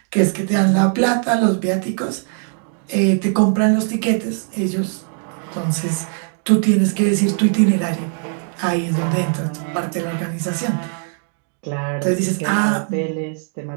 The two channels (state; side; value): silent; left; 57 dB below the other